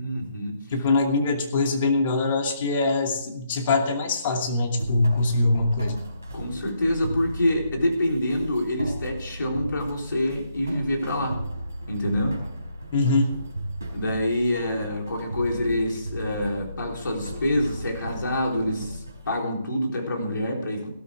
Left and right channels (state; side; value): inverted; both; correlation -0.75